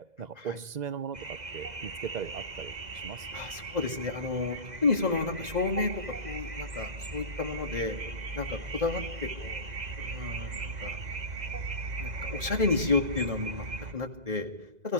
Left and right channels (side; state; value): left; late; 2.0 ms